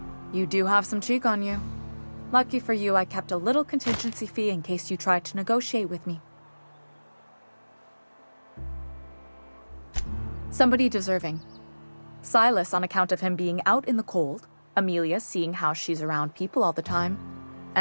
You do have some cheek on you. Lucky for you, I kept a little contingency fee in case you tried to negotiate with me. Somebody deserving. Silas on account of him being out in the cold. Amelia seeing how she's around people all the time.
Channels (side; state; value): both; inverted; correlation -1.00